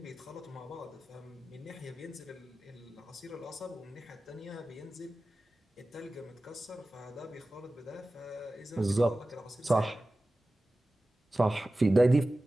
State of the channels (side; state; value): both; normal; correlation 0.96